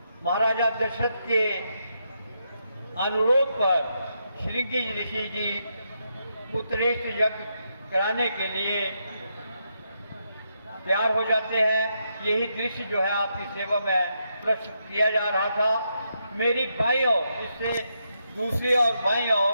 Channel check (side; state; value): both; inverted; correlation -0.82